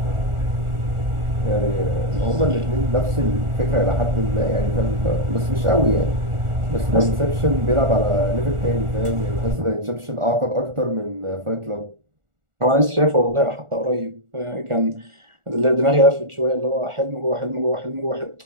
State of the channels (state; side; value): late; left; 1.4 ms